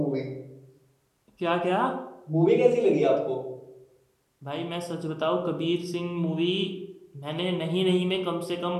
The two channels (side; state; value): both; identical; correlation 1.00